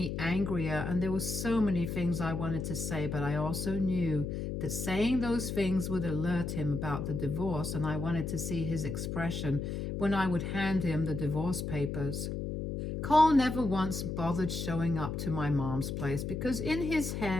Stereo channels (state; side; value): noise; left; hum, 3 dB below the sound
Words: angrier, and there were so many things I wanted to say, but I also knew that saying those things would alert him about the divorce, and I wanted to see his expression when I would hand him the divorce papers. Cole never once bothered showing up to my mom's place because in his